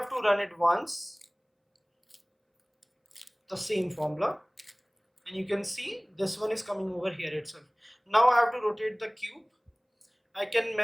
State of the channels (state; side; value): identical; both; correlation 1.00